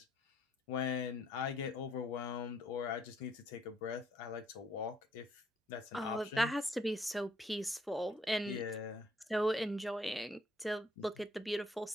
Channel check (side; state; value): both; normal; correlation 0.67